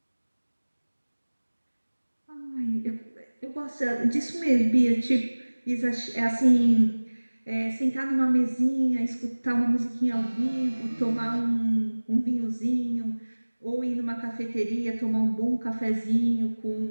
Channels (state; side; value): inverted; both; correlation -1.00